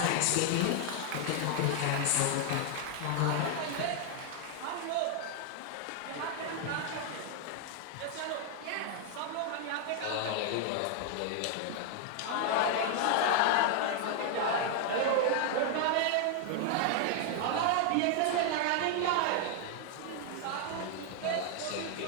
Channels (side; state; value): both; different; correlation 0.00